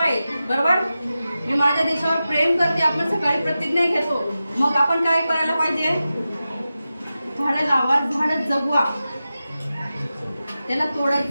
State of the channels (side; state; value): both; inverted; correlation -0.93